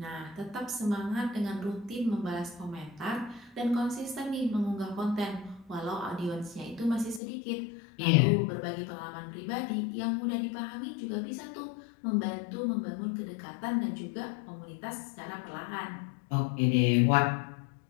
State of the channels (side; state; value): right; drops out; at 7.2 s